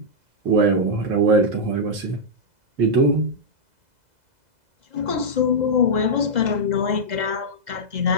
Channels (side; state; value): left; late; 2.0 ms